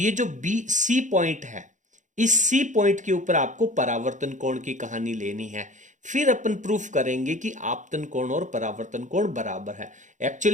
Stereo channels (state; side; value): late; left; 0.36 ms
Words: जो बी सी पॉइंट है इस सी पॉइंट के ऊपर आपको परावर्तन कोण की कहानी लेनी है। फिर अपन प्रूफ करेंगे कि आपतन कोण और परावर्तन कोण बराबर है।